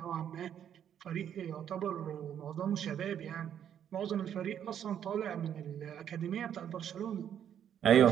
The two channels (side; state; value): left; quieter; 9.4 dB